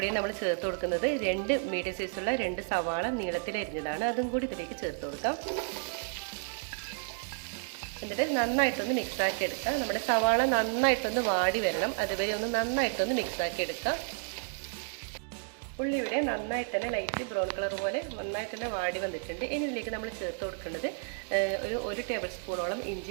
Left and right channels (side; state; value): left; silent; 57 dB below the other